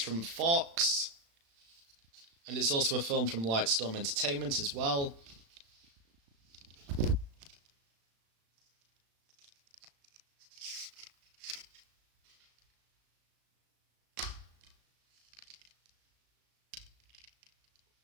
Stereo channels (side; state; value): left; late; 36 ms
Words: Fox, and it's also a film from Lightstorm Entertainment as well.